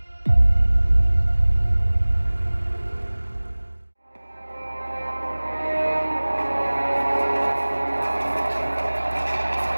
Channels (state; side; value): inverted; both; correlation -1.00